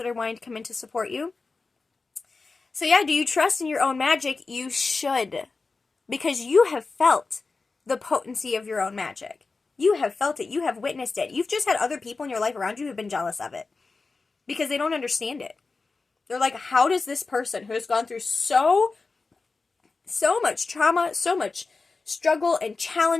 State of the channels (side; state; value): right; quieter; 4.1 dB